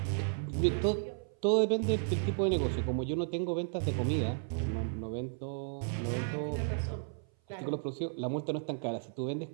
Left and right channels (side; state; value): left; silent; 55 dB below the other